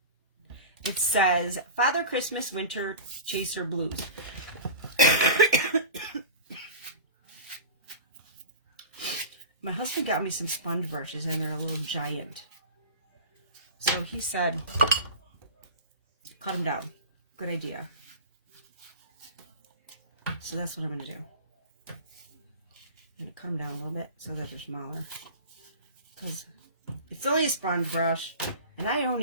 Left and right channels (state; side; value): inverted; both; correlation -0.32